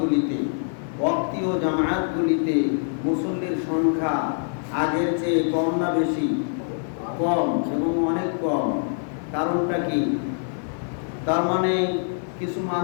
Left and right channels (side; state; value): right; silent; 57 dB below the other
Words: ওয়াক্তীয় জামায়াতগুলিতে মুসল্লির সংখ্যা আগের চেয়ে কম না বেশি? কম, এবং অনেক কম। কারণটা কি? তার মানে কিছু